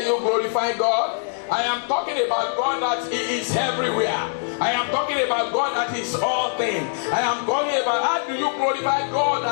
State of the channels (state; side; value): silent; right; digital silence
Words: you glorify God. I am talking about God that He is everywhere. I am talking about God that is all things. I am talking about how do you glorify God